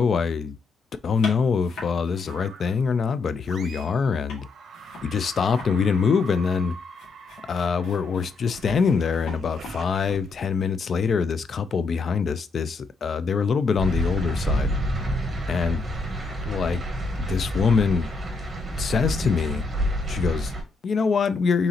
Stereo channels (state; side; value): quieter; right; 4.3 dB